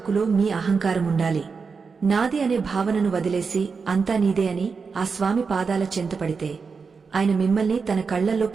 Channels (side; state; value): left; quieter; 5.1 dB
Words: మీ అహంకారం ఉండాలి. నాది అనే భావనను వదిలేసి అంతా నీదే అని ఆ స్వామి పాదాల చెంతపడితే ఆయన మిమ్మల్ని తన కళ్లల్లో